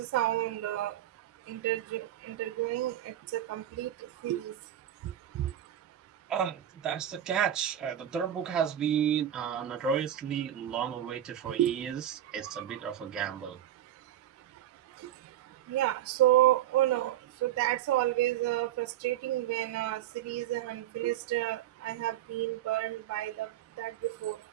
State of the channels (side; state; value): left; quieter; 11.7 dB